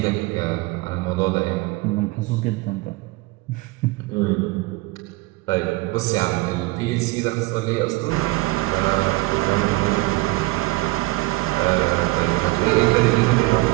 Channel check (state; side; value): quieter; left; 21.3 dB